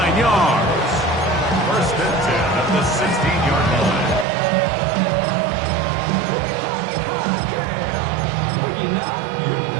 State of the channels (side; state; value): left; drops out; at 4.2 s